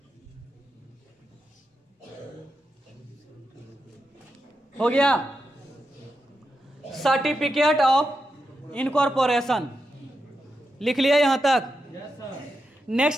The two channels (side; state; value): both; normal; correlation 0.87